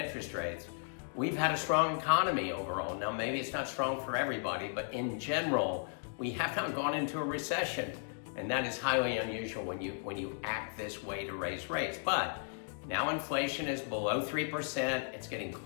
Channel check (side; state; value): right; silent; digital silence